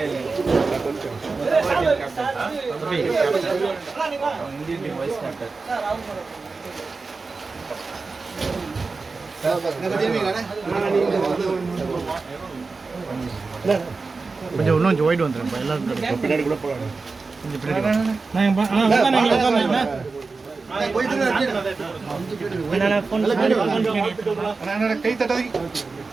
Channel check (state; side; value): quieter; left; 4.1 dB